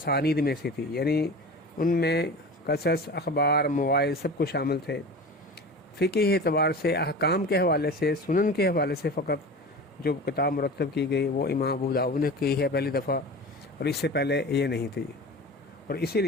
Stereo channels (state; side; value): normal; both; correlation 0.34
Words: میں سے تھی، یعنی ان میں قصص، اخبار، مواعظ سب کچھ شامل تھے۔ فقہی اعتبار سے، احکام کے حوالے سے، سنن کے حوالے سے فقط جو کتاب مرتب کی گئی وہ امام ابو داؤد نے کی ہے پہلی دفعہ، اور اس سے پہلے یہ نہیں تھی۔ اور اسی